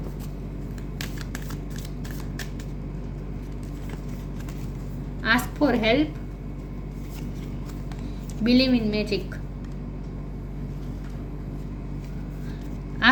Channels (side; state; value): both; identical; correlation 1.00